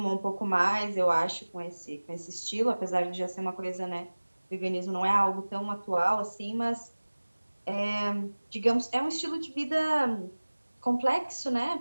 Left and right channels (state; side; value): inverted; both; correlation -1.00